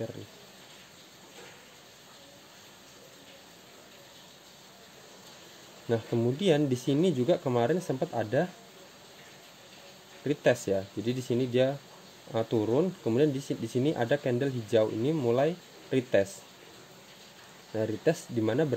nih. Nah kemudian di sini juga kemarin sempat ada retest ya. Jadi di sini dia turun, kemudian di sini ada candle hijau ini mulai retest. Nah retest dimana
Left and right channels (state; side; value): identical; both; correlation 1.00